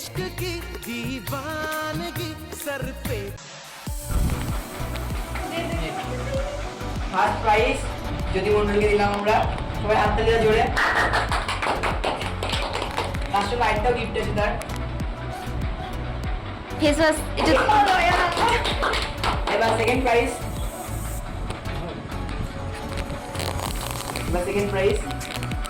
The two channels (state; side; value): identical; both; correlation 1.00